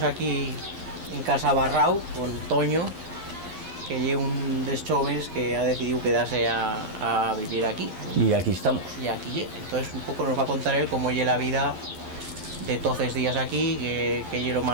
aquí en Casa Barrau con Toño, que lleva un dels jóvenes que ha decidido quedarse a vivir aquí. Y aquí estamos. Y aquí, entonces un poco nos va a contar él cómo lleva la vida de todos estos días aquí, que lleva lo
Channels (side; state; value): left; late; 11 ms